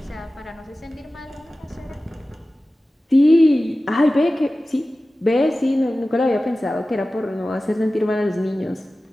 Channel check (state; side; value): normal; both; correlation 0.96